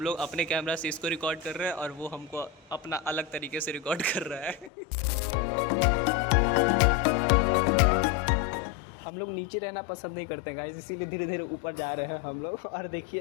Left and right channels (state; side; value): drops out; right; at 4.7 s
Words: लोग अपने कैमरा से इसको रिकॉर्ड कर रहे हैं और वो हमको अपना अलग तरीके से रिकॉर्ड कर रहा है। हम लोग नीचे रहना पसंद नहीं करते गाइस, इसीलिए धीरे धीरे ऊपर जा रहे हैं हम लोग। और देखिए